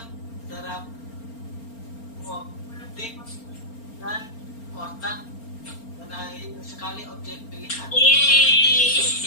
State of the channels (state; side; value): late; right; 4.4 ms